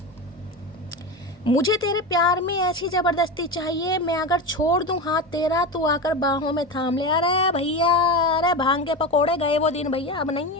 मुझे तेरे प्यार में ऐसी ज़बरदस्ती चाहिए, मैं अगर छोड़ दूं हाथ तेरा, तू आकर बाहों में थाम ले। अरे भैया, अरे भांग के पकोड़े गए वो दिन भैया, अब नहीं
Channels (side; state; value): both; normal; correlation 0.22